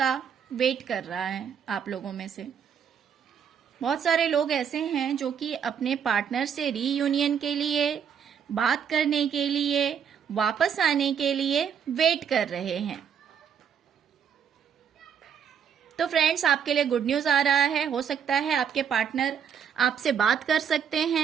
वेट कर रहा है। आप लोगों में से बहुत सारे लोग ऐसे हैं जो कि अपने पार्टनर से रीयूनियन के लिए, बात करने के लिए, वापस आने के लिए वेट कर रहे हैं। तो फ्रेंड्स, आपके लिए गुड न्यूज आ रहा है। हो सकता है आपके पार्टनर आपसे बात कर सकते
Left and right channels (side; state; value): left; quieter; 7.8 dB